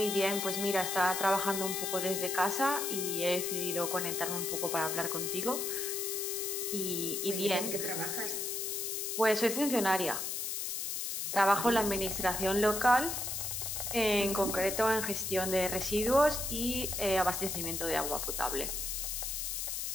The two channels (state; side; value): noise; left; hiss, 2 dB below the sound